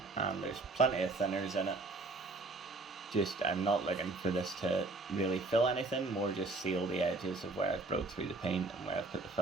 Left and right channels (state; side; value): quieter; left; 3.3 dB